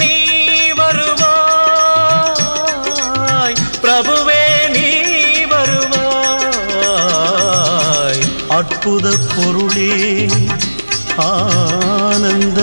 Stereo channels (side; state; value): both; inverted; correlation -1.00